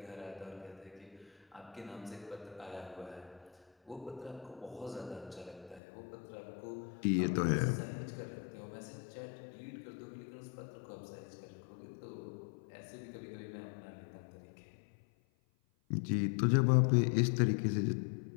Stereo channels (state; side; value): drops out; right; at 5.8 s